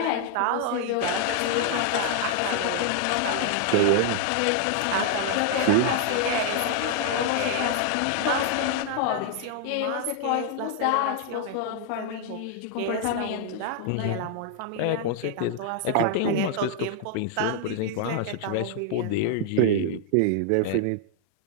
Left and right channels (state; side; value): different; both; correlation 0.00